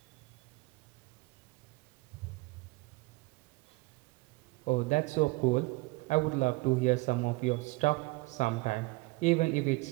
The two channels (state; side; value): quieter; left; 23.6 dB